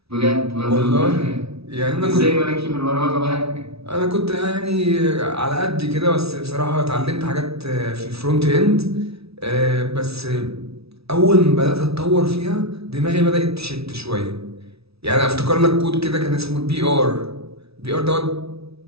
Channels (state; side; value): late; left; 0.77 ms